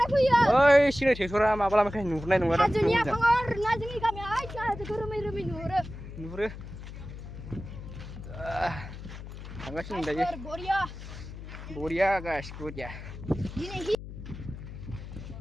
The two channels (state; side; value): noise; left; hum, 12 dB below the sound